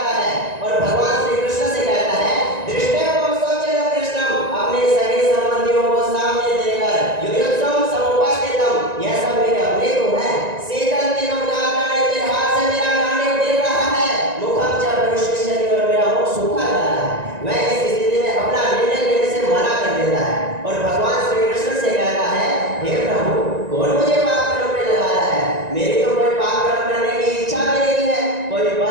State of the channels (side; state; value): left; late; 1.9 ms